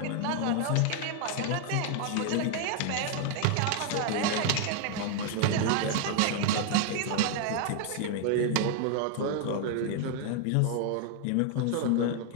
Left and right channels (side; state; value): both; different; correlation 0.00